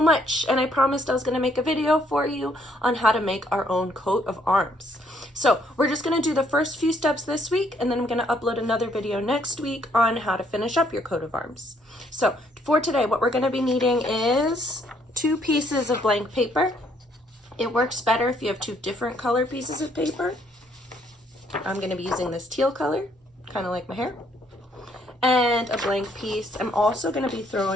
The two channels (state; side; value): normal; both; correlation 0.68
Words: and I promised I was going to make a video for you on how to make our own coat of arms. So we're just going to do the first few steps this week, and then I'm going to upload another video next week on how to finish up your coat of arms. So for today, what we're going to be needing is 2 pieces of blank paper. It works better if you have 2 different color pieces of paper. I'm going to be using this teal color, kind of like my hair, and a blank piece. I'm also going to be